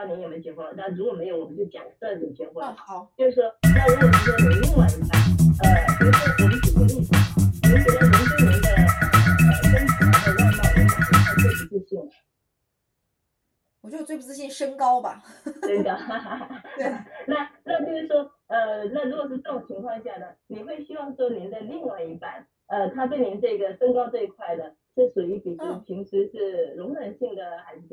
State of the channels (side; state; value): both; identical; correlation 1.00